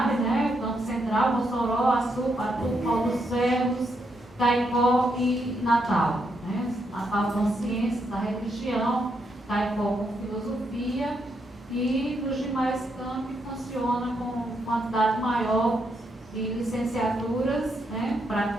né? O campo central, Mossoró, Açu, Patu, Paulo dos Ferros, Caicó e Natal. Né? Natal com ciências da religião, Caicó com filosofia, e nos demais campi funciona com quantidade maior de licenciaturas, né?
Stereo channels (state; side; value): normal; both; correlation 0.79